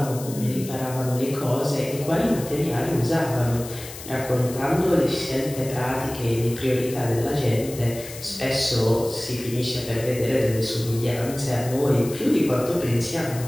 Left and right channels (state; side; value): noise; left; hiss, 13 dB below the sound